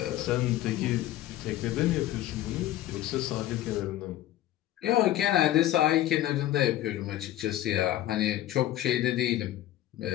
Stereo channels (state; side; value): quieter; right; 13.7 dB